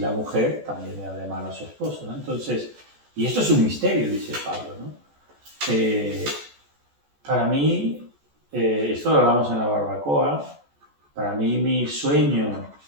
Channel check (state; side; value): late; left; 14 ms